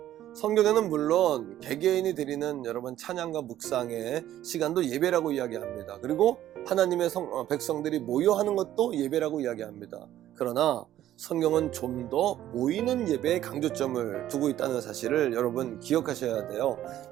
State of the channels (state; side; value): quieter; left; 12.6 dB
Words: 성경에는 물론 개개인이 드리는 여러분 찬양과 묵상의 시간도 예배라고 이야기합니다. 그리고 하나님의 백성들이 모여 하는 것도 예배라고 이야기합니다. 그러나 성경은 좀 더 모이는 예배에 강조점을 두고 있다는 사실을 여러분 기억하셔야 돼요.